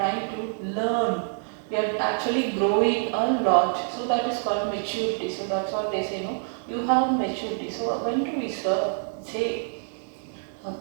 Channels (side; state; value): left; silent; 58 dB below the other